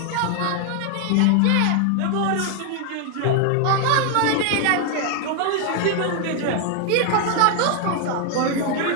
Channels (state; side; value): different; both; correlation 0.00